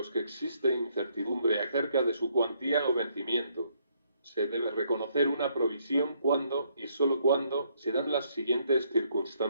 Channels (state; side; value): inverted; both; correlation -0.70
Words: que existe incertidumbre acerca de su cuantía o vencimiento. Se debe reconocer una provisión cuando, y solo cuando, se dan las siguientes